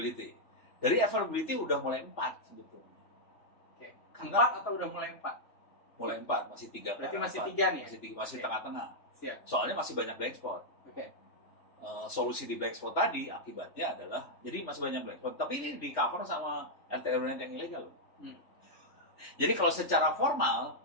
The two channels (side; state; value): right; late; 3.4 ms